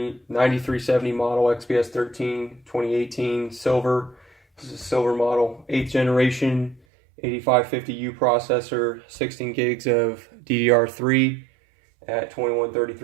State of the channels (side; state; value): left; drops out; at 6.8 s